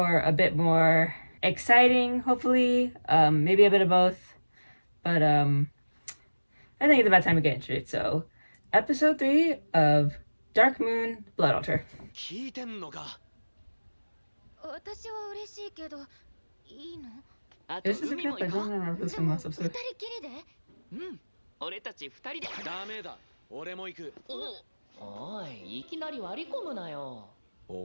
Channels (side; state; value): both; inverted; correlation -1.00